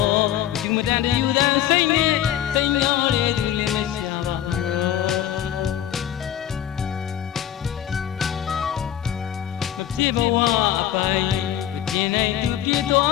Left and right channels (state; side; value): quieter; right; 11.1 dB